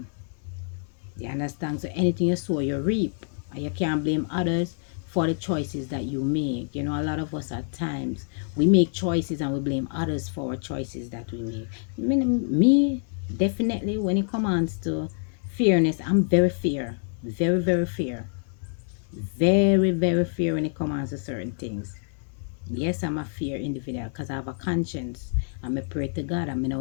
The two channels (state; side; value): silent; right; 60 dB below the other